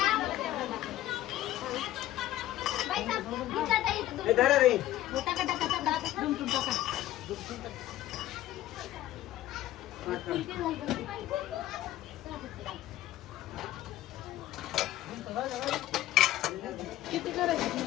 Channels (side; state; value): right; quieter; 14.4 dB